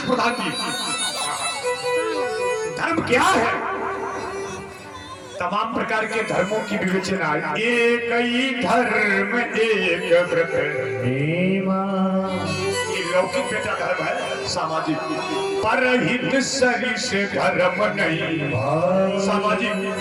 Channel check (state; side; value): identical; both; correlation 1.00